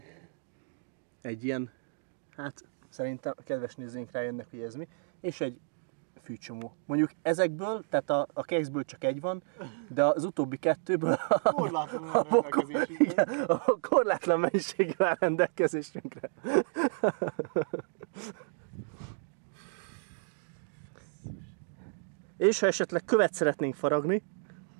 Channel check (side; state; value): left; silent; digital silence